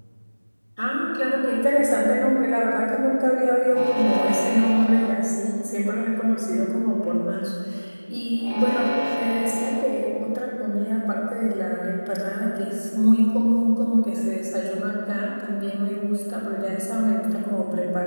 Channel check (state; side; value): inverted; both; correlation -1.00